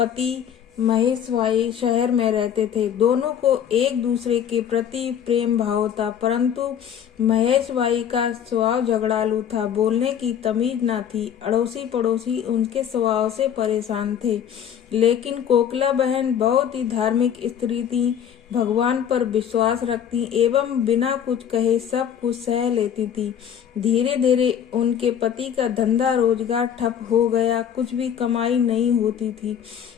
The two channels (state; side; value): quieter; right; 8.9 dB